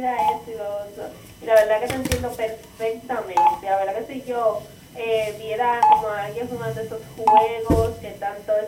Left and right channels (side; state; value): both; identical; correlation 1.00